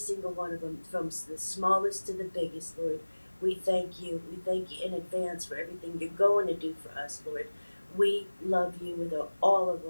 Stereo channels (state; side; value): inverted; both; correlation -1.00